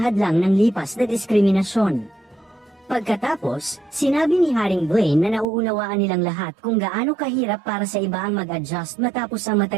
hadlang ng lipas na diskriminasyon. Pagkatapos, sinabi ni Haring Blaine na nauunawaan nilang lahat kung gaano kahirap para sa iba ang mag-adjust matapos ang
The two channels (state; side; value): drops out; left; at 5.5 s